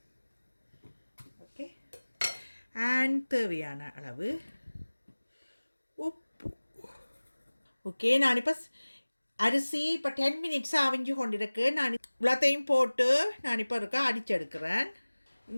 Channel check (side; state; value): both; inverted; correlation -1.00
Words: ஓகே, அண்ட் தேவையான அளவு உப்பு. ஓகே, நான் இப்போ அரிசி இப்போ 10 மினிட்ஸாக அவிஞ்சு கொண்டிருக்கு. நான் இவ்வளோத்தையும் போட்டு நான் இப்போ இருக்க அடிச்செடுக்கிறேன்.